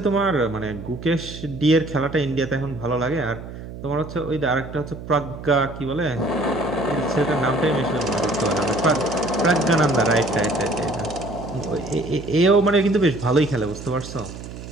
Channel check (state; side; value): noise; right; hum, 12 dB below the sound